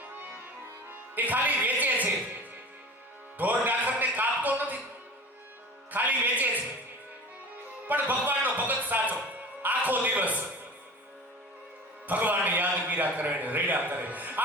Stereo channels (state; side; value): normal; both; correlation 0.37